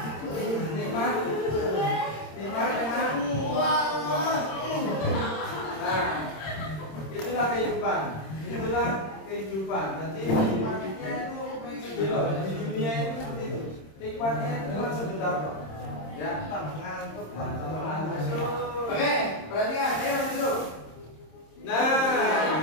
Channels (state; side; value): late; right; 26 ms